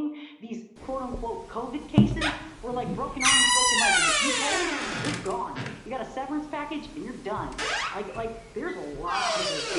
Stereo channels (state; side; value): identical; both; correlation 1.00